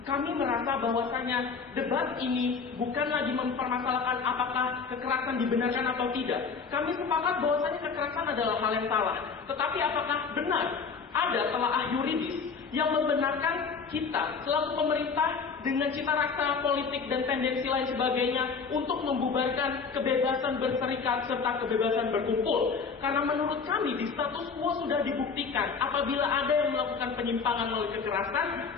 Kami merasa bahwasanya debat ini bukan lagi mempermasalahkan apakah kekerasan dibenarkan atau tidak. Kami sepakat bahwasanya kekerasan adalah hal yang salah. Tetapi apakah benar ada telaah yuridis yang membenarkan kita selaku pemerintah dengan cita rasa politik dan tendensi lain sebagainya untuk membubarkan kebebasan berserikat serta kebebasan berkumpul? Karena menurut kami di status quo sudah dibuktikan apabila ada yang melakukan penyimpangan melalui kekerasan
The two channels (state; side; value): quieter; right; 5.3 dB